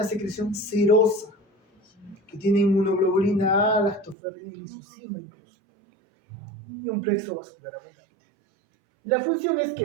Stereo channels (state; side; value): drops out; left; at 4.2 s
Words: secreción serosa, que tiene inmunoglobulina A, lactoferrina y lisocima incluso, y un plexo vascular abundante. La función es